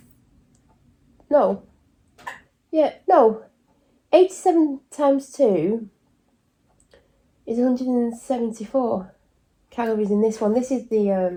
no, yeah, no, 87 times 2 is 174 calories in this one. This is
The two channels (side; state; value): both; identical; correlation 1.00